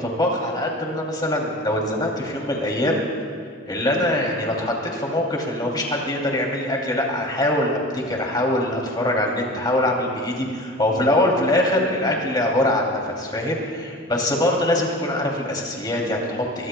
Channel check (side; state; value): both; normal; correlation 0.35